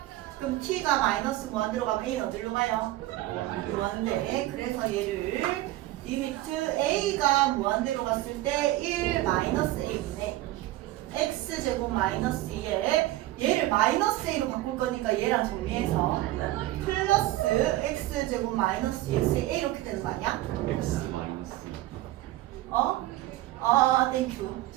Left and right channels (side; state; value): left; quieter; 16.1 dB